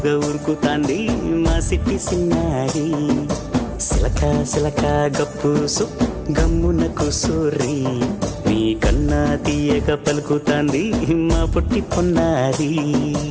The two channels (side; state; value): both; identical; correlation 1.00